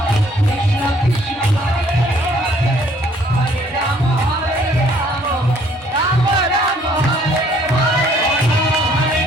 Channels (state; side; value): normal; both; correlation 0.61